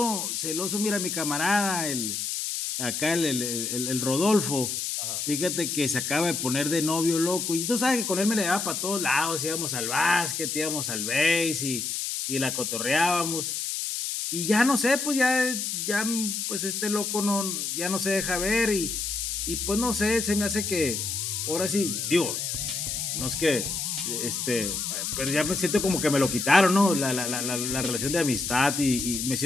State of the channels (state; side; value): noise; left; hiss, 2 dB below the sound